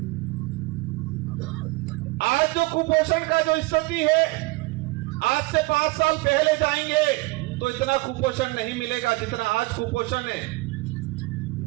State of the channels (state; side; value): quieter; left; 22.8 dB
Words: आज जो कुपोषण का जो स्थिति है, आज से 5 साल पहले जाएंगे तो इतना कुपोषण नहीं मिलेगा जितना आज कुपोषण है।